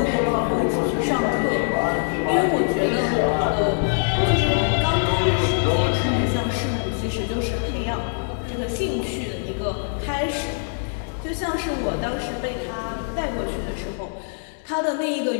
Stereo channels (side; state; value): right; silent; 63 dB below the other